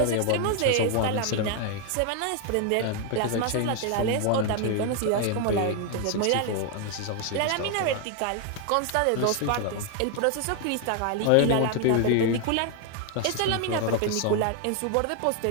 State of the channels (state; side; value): different; both; correlation 0.00